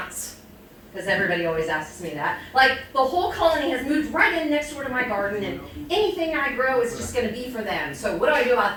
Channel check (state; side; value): identical; both; correlation 1.00